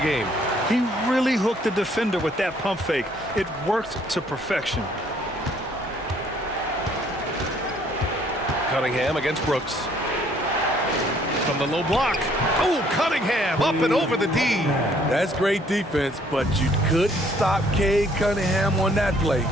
He really hooked the defender with that pump fake. It worked to perfection. Cunningham against Brooks. From the low block. Oh, Cunningham up and over the D. That's great defense, but you couldn't stop Cade Cunningham on that play.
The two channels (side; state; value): both; normal; correlation 0.63